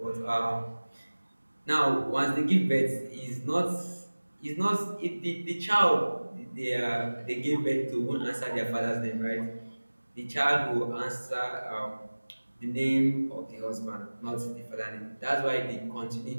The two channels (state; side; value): inverted; both; correlation -1.00